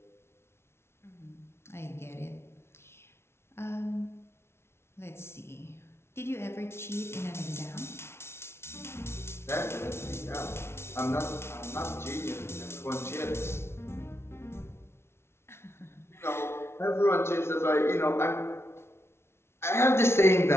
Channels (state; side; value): late; right; 0.12 ms